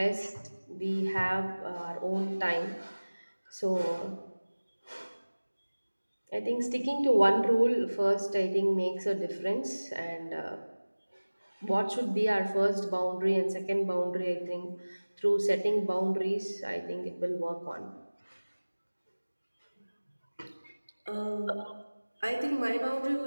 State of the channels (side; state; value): both; inverted; correlation -1.00